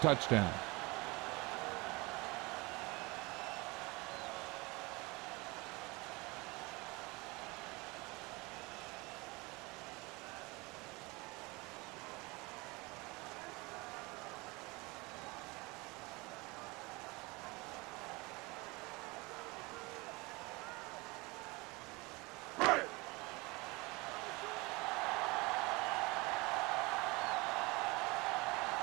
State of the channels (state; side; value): quieter; left; 24.9 dB